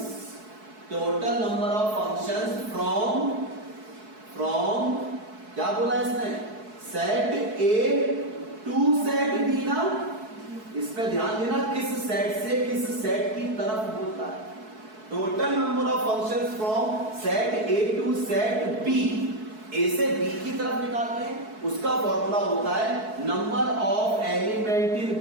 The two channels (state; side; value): late; left; 4.6 ms